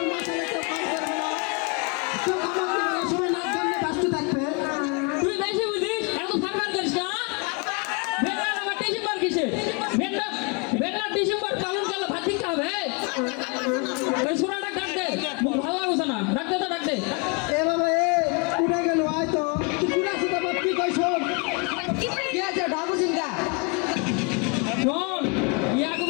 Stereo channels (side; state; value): right; quieter; 32.1 dB